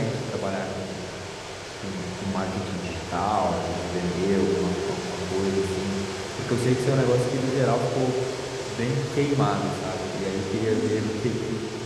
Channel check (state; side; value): identical; both; correlation 1.00